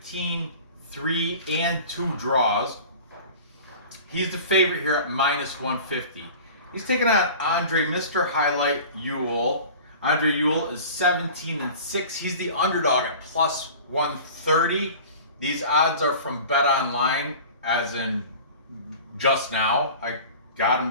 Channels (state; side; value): inverted; both; correlation -0.39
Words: 3, and 2 draws. He's the favorite here at -150. He's taking on Andre Mr. Highlight Ewell. Andre Ewell is 17-6. He's the underdog at +130. These odds are from Bet Online, as in just now. I got him